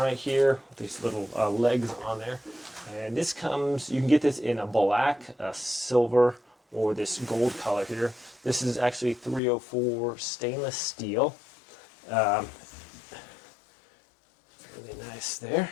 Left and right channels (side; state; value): right; drops out; at 9.4 s